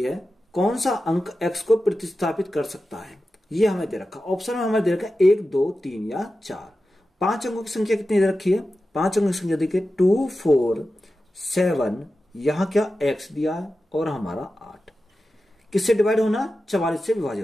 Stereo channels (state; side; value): normal; both; correlation 0.93